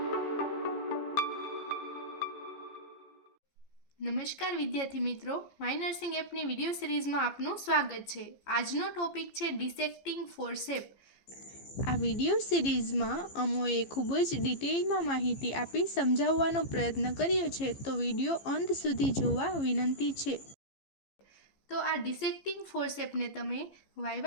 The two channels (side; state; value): right; late; 15 ms